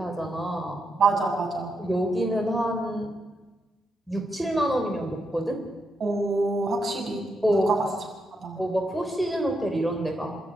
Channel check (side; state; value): both; normal; correlation 0.82